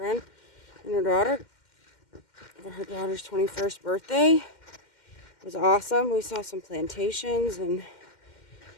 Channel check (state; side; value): late; right; 2.1 ms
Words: and her daughter for her daughter's 21st birthday. It was awesome. We saw some plantations and